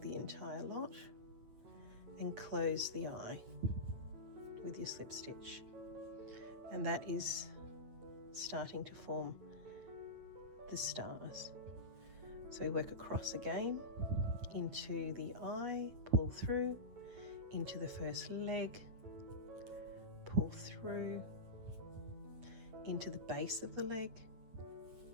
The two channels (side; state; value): left; late; 9.0 ms